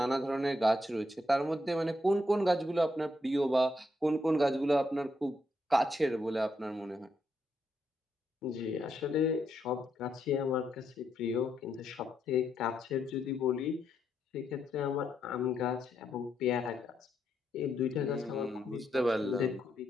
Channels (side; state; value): both; normal; correlation 0.79